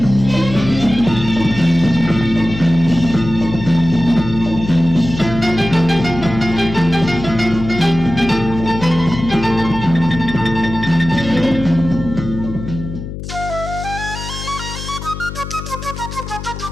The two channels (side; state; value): left; noise; hum, 9 dB below the sound